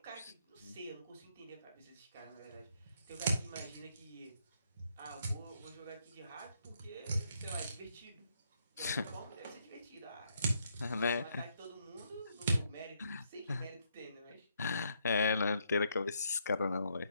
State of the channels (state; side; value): inverted; both; correlation -0.74